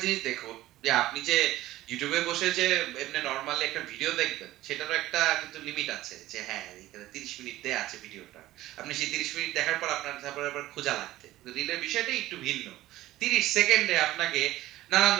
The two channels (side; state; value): left; quieter; 15.8 dB